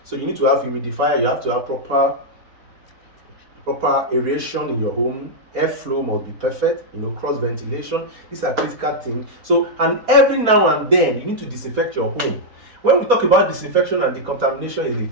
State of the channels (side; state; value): left; late; 4.3 ms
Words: So you need to have humidifier, you have to have proper aeration in your home, airflow must be perfect, you know, cross ventilation. These are critical things. So, and every now and then you need to disinfect your home. When we talk about disinfection and decontamination in the